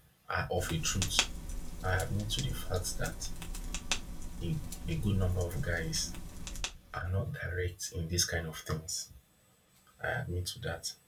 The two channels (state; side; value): identical; both; correlation 1.00